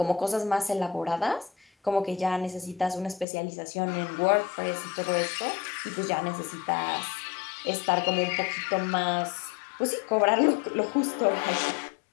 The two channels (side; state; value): right; drops out; at 3.2 s